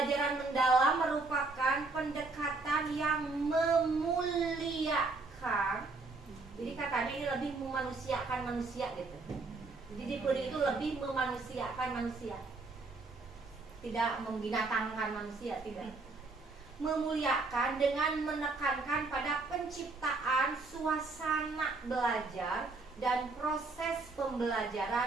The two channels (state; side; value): quieter; left; 3.7 dB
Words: mendalam merupakan pendekatan yang memuliakan. Jadi katanya ini lebih memanusiakan manusia gitu. Jadi deep learning itu lebih memanusiakan manusia. Tidak membinatangkan manusia, tidak. Memuliakan dengan menekankan pada penciptaan suasana belajar dan proses